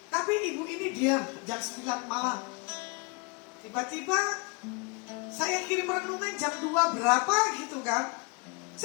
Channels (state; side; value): quieter; right; 29.8 dB